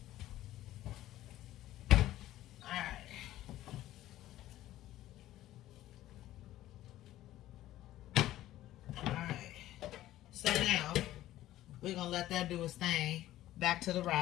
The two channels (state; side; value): quieter; right; 14.4 dB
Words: Alright. Alright. So now, we're going to let that do its thing. Back to the